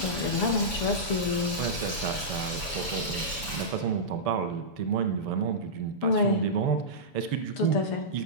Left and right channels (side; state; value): right; late; 7.0 ms